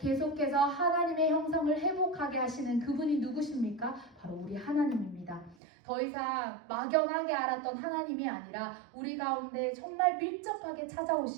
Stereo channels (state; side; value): drops out; left; at 5.6 s